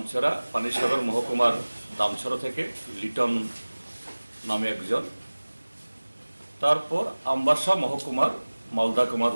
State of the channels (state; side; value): inverted; both; correlation -1.00